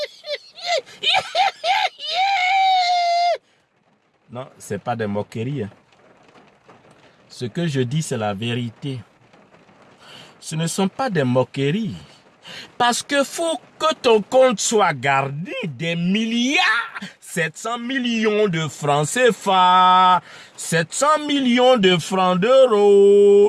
Non, c'est pas des moqueries. Hein. Ce que je dis, c'est la vérité. Ce ne sont pas des moqueries. Parce que faut que ton compte soit gardé des milliards, 700 millions de francs CFA, 700 millions de francs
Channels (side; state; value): both; identical; correlation 1.00